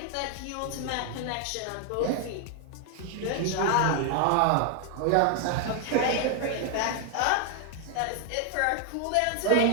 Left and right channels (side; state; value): both; different; correlation 0.00